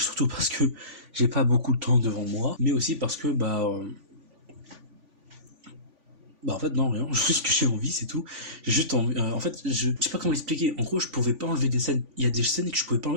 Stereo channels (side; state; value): left; late; 3.5 ms